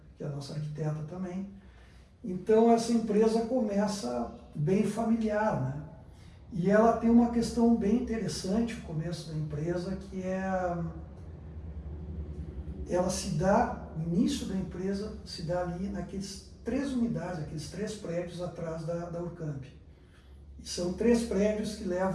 Que é a nossa arquiteta também. Então essa empresa começa bem familiar, né? E ela tem uma questão bem interessante no começo da empresa, que ela se dá, o início da empresa se dá ali naqueles 3 unidades, aqueles 3 prédios atrás da Urcamp. E são 3 prédios que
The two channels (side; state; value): both; identical; correlation 1.00